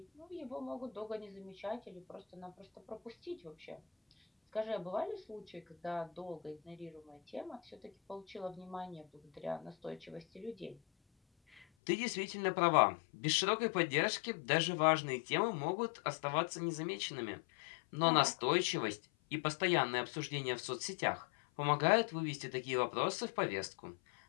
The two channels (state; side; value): drops out; right; at 11.7 s